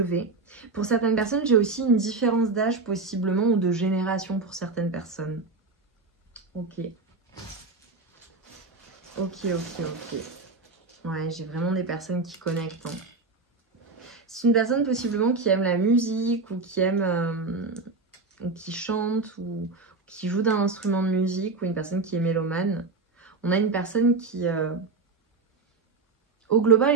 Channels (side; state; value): left; quieter; 3.9 dB